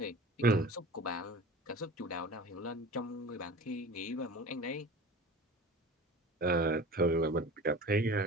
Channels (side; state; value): both; normal; correlation 0.37